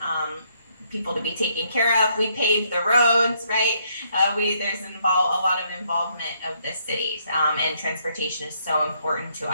people to be taken care of. We pave the roads, right? There's a lot of involvement of the city, and transportation is so important to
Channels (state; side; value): inverted; both; correlation -0.71